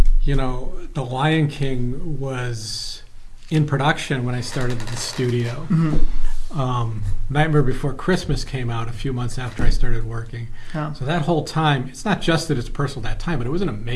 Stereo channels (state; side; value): identical; both; correlation 1.00